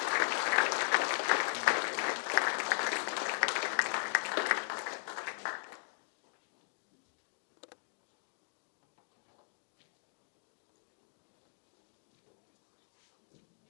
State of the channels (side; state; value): right; silent; digital silence